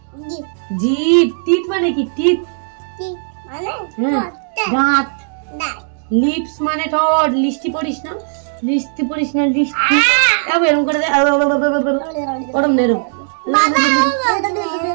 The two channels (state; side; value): silent; left; digital silence